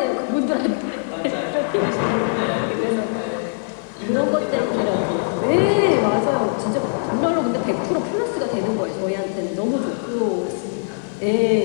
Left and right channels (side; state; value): right; silent; digital silence